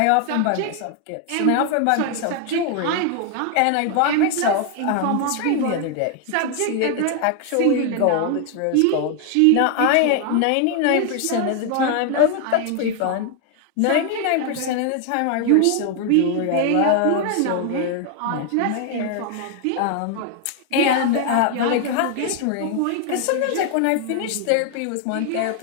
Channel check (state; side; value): different; both; correlation 0.00